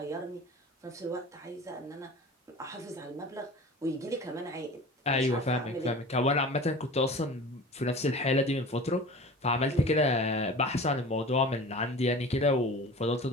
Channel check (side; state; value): both; normal; correlation 0.38